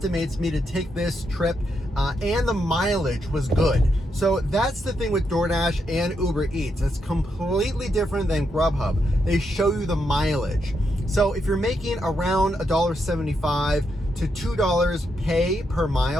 me to take this trip and the mileage was good. So that's the thing with DoorDash and Uber Eats. It's completely different than Grubhub. They show you the mileage. So if you're making around $1.75 to $2 pay per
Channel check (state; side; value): normal; both; correlation 0.81